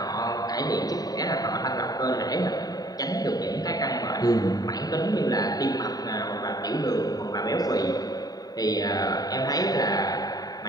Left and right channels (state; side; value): late; right; 0.18 ms